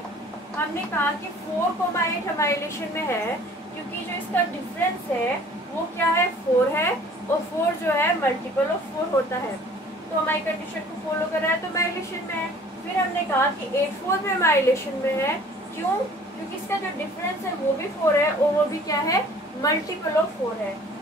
हमने कहा कि 4, 8 हमारे रिलेशन में है क्योंकि जो इसका डिफरेंस है वो क्या है, 4 है और 4 जो है मल्टीपल ऑफ 4 होता है। तो हमारी कंडीशन को फॉलो कर रहा है तो हमारे रिलेशन में है। फिर हमने कहा कि 8 4 भी हमारे रिलेशन में है, क्यों, क्योंकि इसका जो डिफरेंस है वो भी 4 है और वो भी क्या है, मल्टीपल ऑफ 4 है।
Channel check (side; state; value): both; normal; correlation 0.51